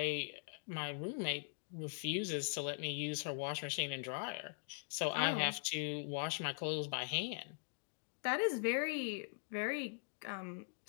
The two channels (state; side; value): silent; right; digital silence